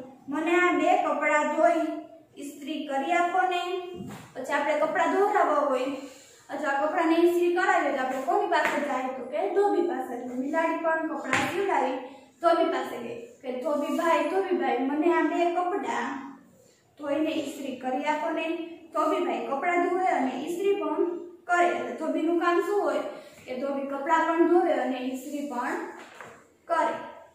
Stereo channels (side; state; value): both; identical; correlation 1.00